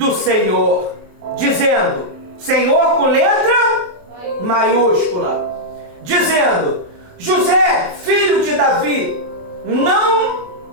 Senhor, dizendo, Senhor com letra maiúscula, dizendo, José, filho de Davi, não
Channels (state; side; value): late; left; 27 ms